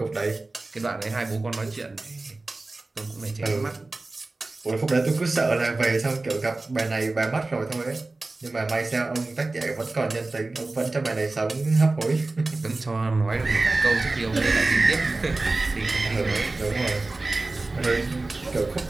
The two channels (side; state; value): left; quieter; 3.2 dB